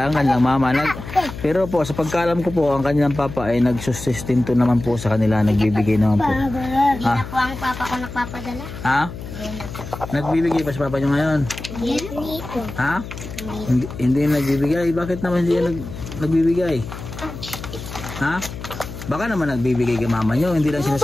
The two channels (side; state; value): left; noise; hum, 11 dB below the sound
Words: ang kanilang mama. Pero po sa pagkaalam ko po, ang kanilang papa ay nagsusustento naman po sa kanila. Nagbibigay naman po. Hindi na po ang papa ko nagpapadala. Ha? Nagbibigay pa sa papa nyo ngayon? Hindi nito. Ha? Hindi nagbibigay? Bakit naman hindi nagbibigay? Ha? Baka naman nagbibigay kay mama nyo, hindi lang